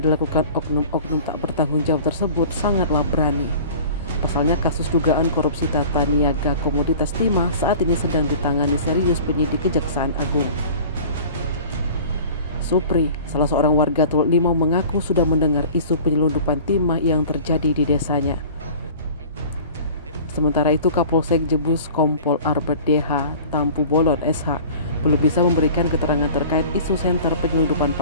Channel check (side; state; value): both; inverted; correlation -0.43